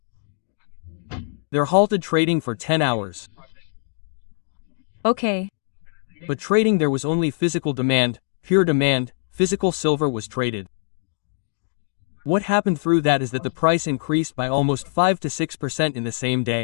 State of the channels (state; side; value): silent; right; digital silence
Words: They're halted trading for 10 hours. Okay. But trading, there was only physical demand, pure demand, physical silver was traded. What happened through that is that the price increased by almost 5 to 6% in the same